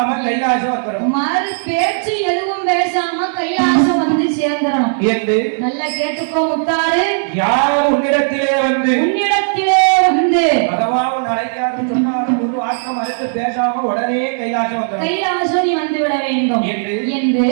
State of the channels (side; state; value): left; silent; 60 dB below the other